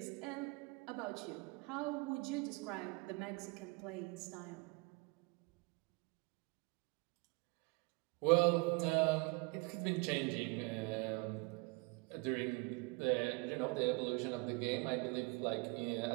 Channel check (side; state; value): left; quieter; 28.1 dB